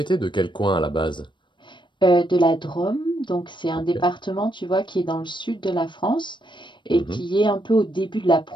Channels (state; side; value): late; right; 0.23 ms